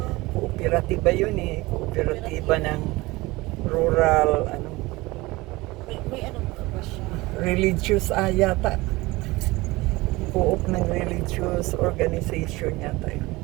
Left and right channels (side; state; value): left; quieter; 21.2 dB